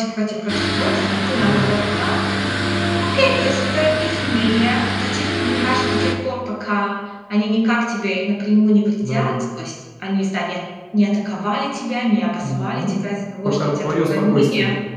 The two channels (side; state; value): both; identical; correlation 1.00